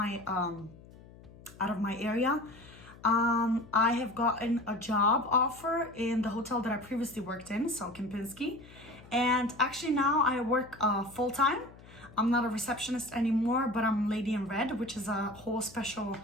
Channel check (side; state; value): left; noise; hum, 21 dB below the sound